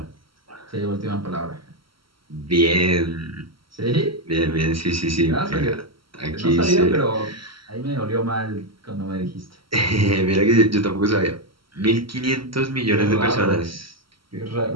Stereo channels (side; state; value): left; late; 0.74 ms